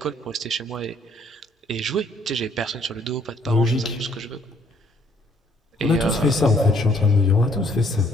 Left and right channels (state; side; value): normal; both; correlation 0.65